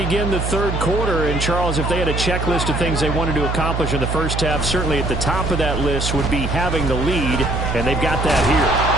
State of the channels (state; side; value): noise; right; hum, 2 dB below the sound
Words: the 3rd quarter, and Charles, if they had a checklist of things they wanted to accomplish in the first half, certainly at the top of that list would be having the lead, and they've got that here.